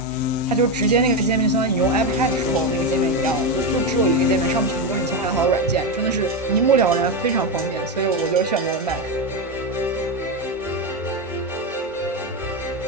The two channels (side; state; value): both; normal; correlation 0.11